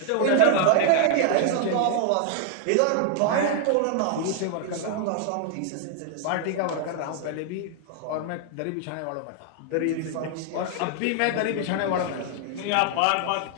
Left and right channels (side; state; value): both; different; correlation 0.00